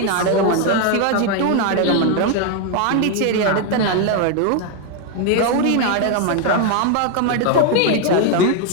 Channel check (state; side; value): different; both; correlation 0.01